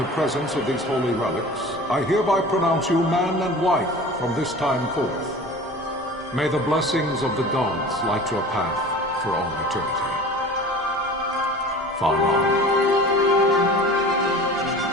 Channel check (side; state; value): both; normal; correlation 0.40